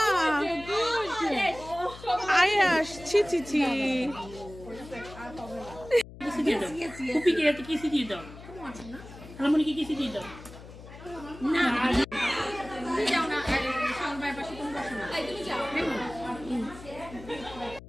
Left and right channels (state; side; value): noise; left; hum, 16 dB below the sound